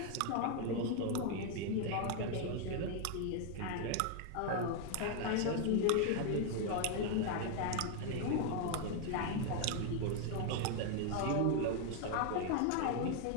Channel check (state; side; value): different; both; correlation 0.00